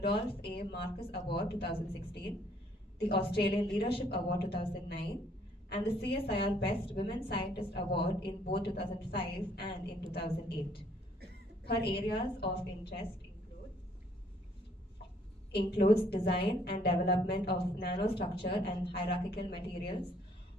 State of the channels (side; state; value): both; normal; correlation 0.64